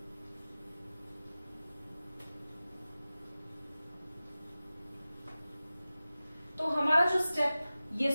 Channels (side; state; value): both; inverted; correlation -0.96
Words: तो हमारा जो स्टेप ये